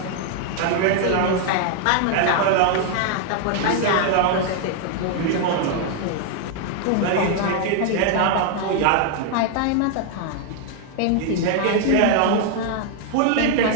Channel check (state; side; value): different; both; correlation 0.00